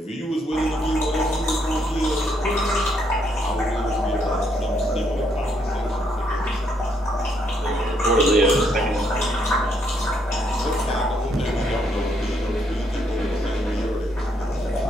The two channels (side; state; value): both; normal; correlation 0.73